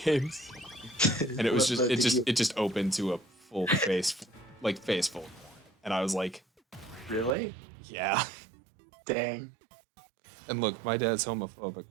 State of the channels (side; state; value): left; drops out; at 7.4 s